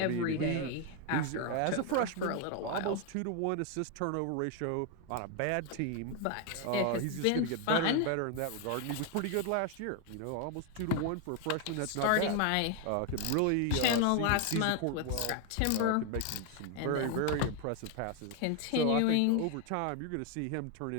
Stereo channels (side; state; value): both; different; correlation 0.01